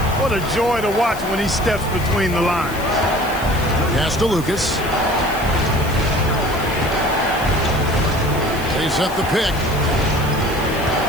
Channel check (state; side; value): noise; left; hiss, 15 dB below the sound